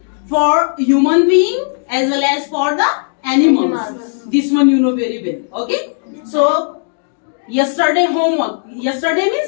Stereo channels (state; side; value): silent; right; digital silence